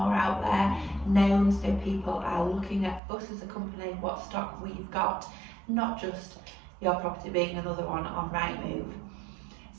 out there, known, so people are looking at us as a company, what stock we've got, not just your property being another one on Rightmove.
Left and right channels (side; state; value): left; drops out; at 3.0 s